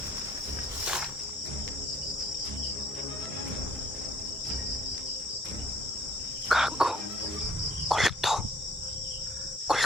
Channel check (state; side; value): normal; both; correlation 0.60